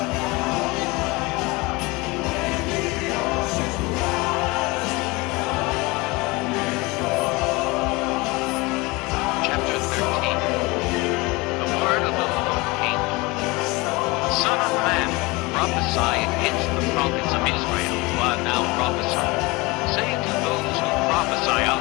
Son of man, prophesy against the prophets of Israel who are now prophesying. Say to those who prophesy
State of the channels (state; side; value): quieter; right; 24.2 dB